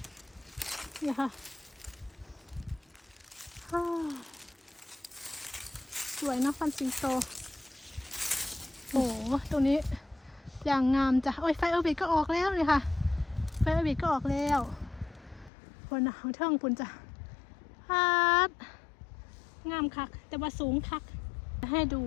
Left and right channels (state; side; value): drops out; right; at 15.5 s